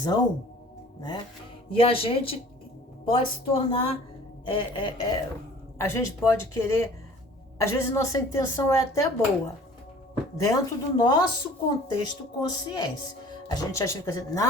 né? E a gente pode se tornar... a gente pode querer, às vezes nossa intenção é até boa, dentro do nosso contexto consciência. A gente acha que assim,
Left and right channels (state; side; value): normal; both; correlation 0.49